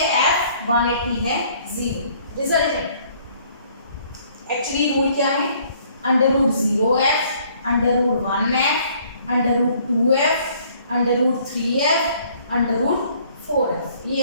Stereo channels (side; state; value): both; inverted; correlation -0.60